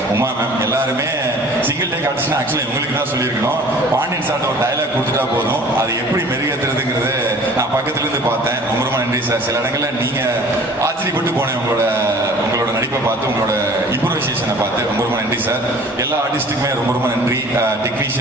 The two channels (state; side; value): normal; both; correlation 0.48